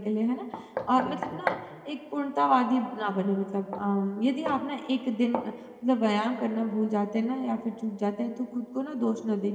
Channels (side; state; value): both; identical; correlation 1.00